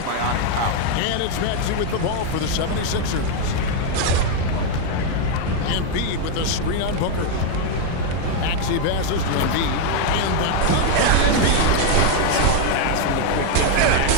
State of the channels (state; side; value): different; both; correlation 0.01